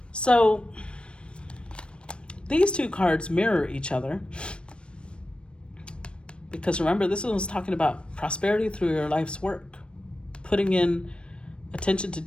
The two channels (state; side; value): late; right; 0.057 ms